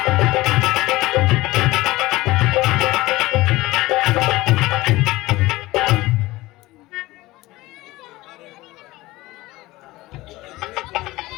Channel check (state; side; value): quieter; right; 19.0 dB